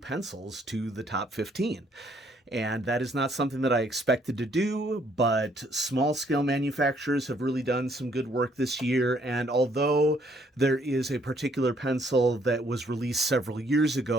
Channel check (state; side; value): normal; both; correlation 0.66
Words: to the top 15. And that is not something that I expected to do, but small scale manufacturers have really done some good work this year. And although there is a particular pencil that was released several years